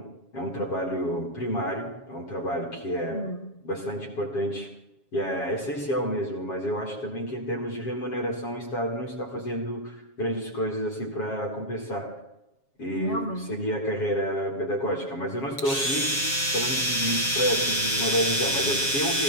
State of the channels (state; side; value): late; right; 7.3 ms